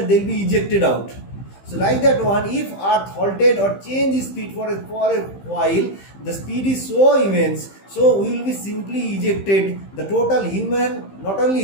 they'll be ejected out. So like that one, if earth halted or changed speed for a while, the speed is so immense, so we will be simply ejected. The total human, not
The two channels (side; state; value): right; late; 15 ms